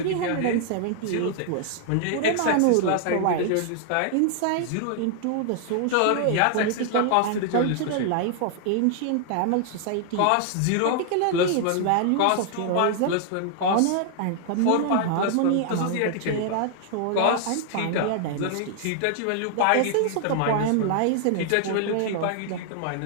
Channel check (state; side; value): different; both; correlation -0.01